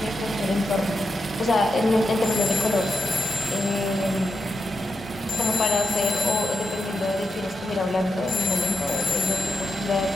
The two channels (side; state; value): both; normal; correlation 0.86